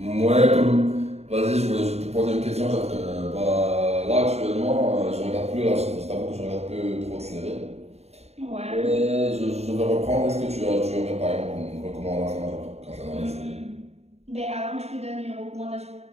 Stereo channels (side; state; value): left; late; 0.31 ms